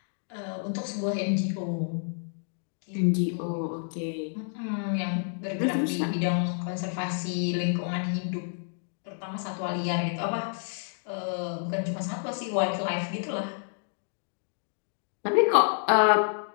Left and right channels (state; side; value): silent; right; 58 dB below the other